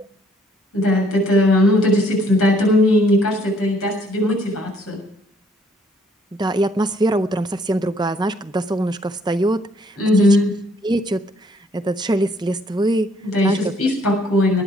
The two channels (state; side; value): normal; both; correlation 0.64